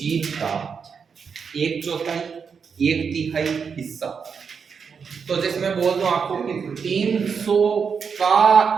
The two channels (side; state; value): left; quieter; 6.1 dB